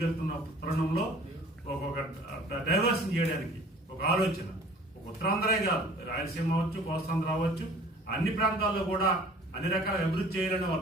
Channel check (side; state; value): both; normal; correlation 0.49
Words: తరుణంలో ఒక డైవర్షన్ చేయడానికి ఒక ఆలోచన, ఒక ఉత్తరాంధ్రే కాదు, రాయలసీమ అవ్వచ్చు, కోస్తాంధ్ర అవ్వచ్చు, అన్ని ప్రాంతాల్లో కూడా అన్ని రకాల అభివృద్ధి చేయాలని